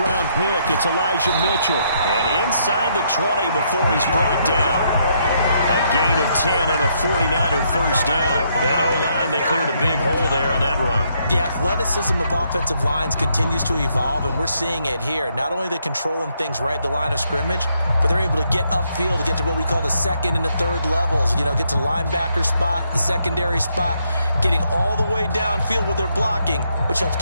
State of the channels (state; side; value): inverted; both; correlation -0.74